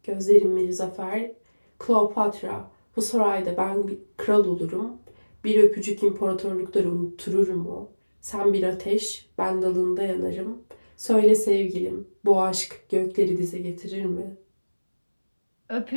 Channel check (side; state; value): both; inverted; correlation -1.00